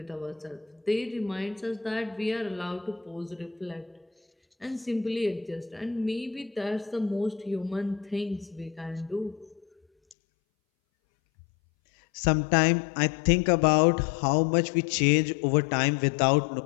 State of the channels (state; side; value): drops out; right; at 10.2 s